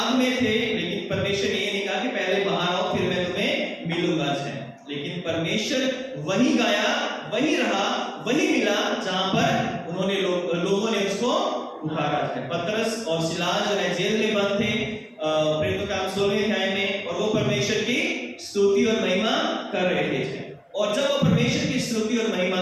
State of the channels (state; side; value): identical; both; correlation 1.00